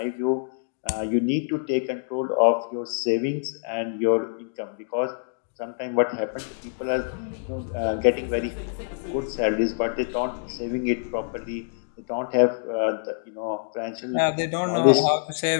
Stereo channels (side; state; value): right; silent; digital silence